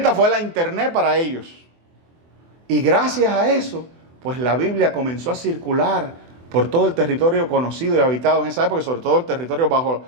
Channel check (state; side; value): late; left; 24 ms